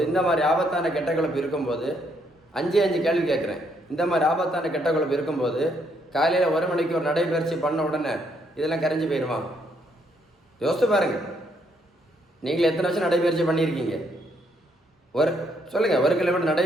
இந்த மாதிரி ஆபத்தான கெட்ட கொழுப்பு இருக்கும்போது 5 கேள்வி கேட்குறேன். இந்த மாதிரி ஆபத்தான கெட்ட கொழுப்பு இருக்கும்போது காலையில் 1 மணிக்கு ஒரு நடைபயிற்சி பண்ண உடனே இதெல்லாம் கரைஞ்சி போயிடுமா? யோசித்து பாருங்க. நீங்கள் எத்தனை வருஷம் நடைபயிற்சி பண்ணியிருக்கீங்க? சொல்லுங்கள், 1 கிலோமீட்டர்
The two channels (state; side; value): normal; both; correlation 0.72